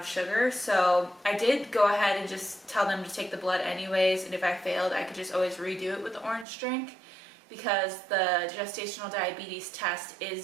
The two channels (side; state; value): left; drops out; at 6.5 s